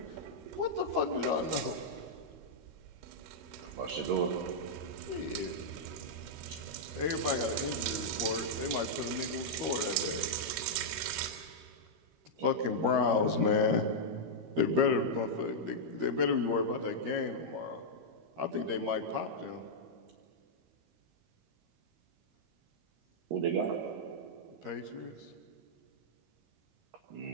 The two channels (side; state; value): left; late; 13 ms